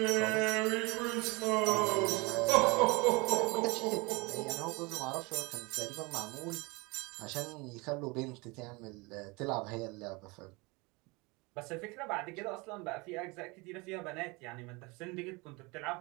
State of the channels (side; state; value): left; quieter; 26.3 dB